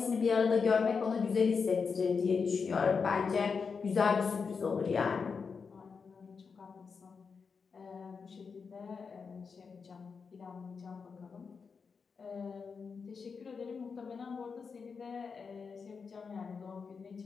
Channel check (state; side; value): quieter; right; 5.4 dB